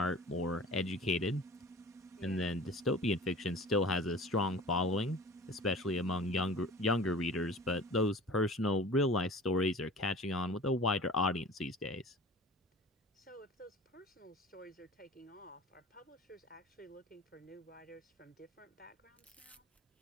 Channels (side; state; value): both; normal; correlation 0.42